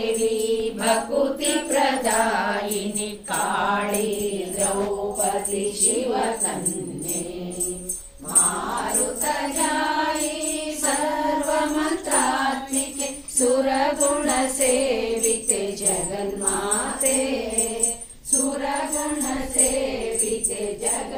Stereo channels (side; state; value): both; identical; correlation 1.00